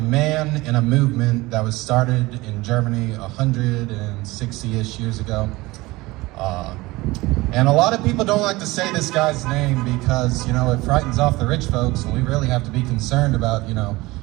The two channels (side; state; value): left; quieter; 20.8 dB